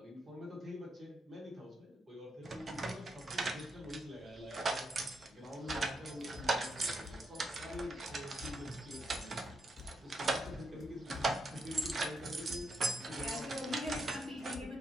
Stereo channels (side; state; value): both; normal; correlation 0.81